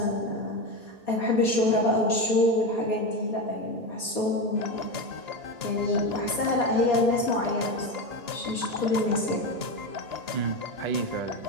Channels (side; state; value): left; late; 1.8 ms